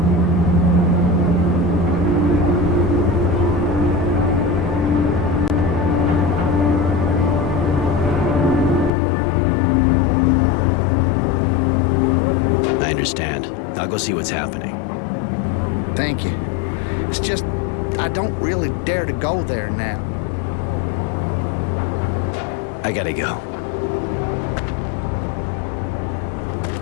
I understand. I'll go see what's happening. Thank you. It's just, I don't really dare to go there now. I gotta go.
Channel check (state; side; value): drops out; right; at 8.9 s